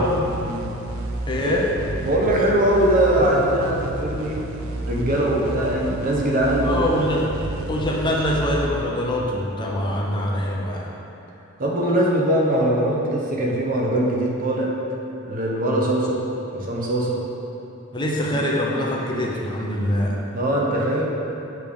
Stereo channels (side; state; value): both; normal; correlation 0.35